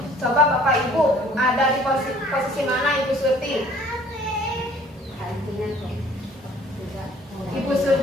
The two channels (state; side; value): normal; both; correlation 0.55